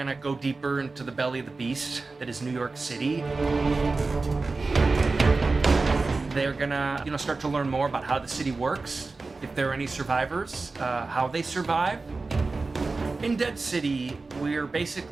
go deeper into the belly of the beast that is New York City. They're gonna, start to learn more about how the city works, if there are any survivors, how they survive. In Dead City, we're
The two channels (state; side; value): quieter; left; 3.8 dB